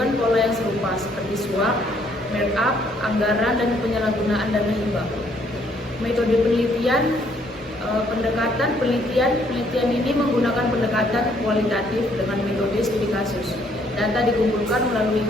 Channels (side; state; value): both; normal; correlation 0.66